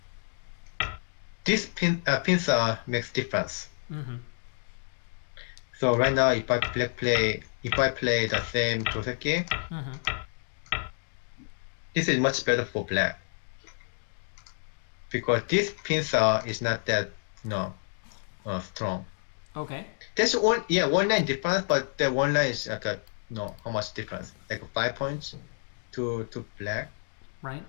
This pincer makes difference. So right now, if I play the same Joseki, this is much better for black because this pincer is not that strong. Okay. There's one line difference, but the one line is like how much difference? Like 5 points to black. Right.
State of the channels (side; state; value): right; silent; digital silence